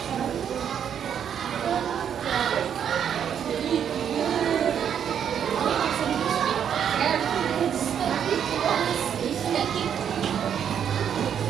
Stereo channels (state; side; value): quieter; left; 8.6 dB